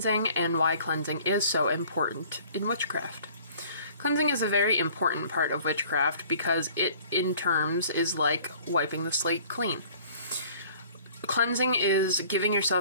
and why cleansing is so important in witchcraft. Cleansing is a very important part of witchcraft because it, in terms, is like wiping the slate clean. Cleansing is giving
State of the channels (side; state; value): both; inverted; correlation -0.52